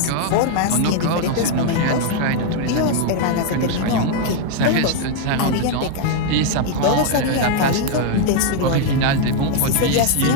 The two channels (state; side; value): different; both; correlation 0.00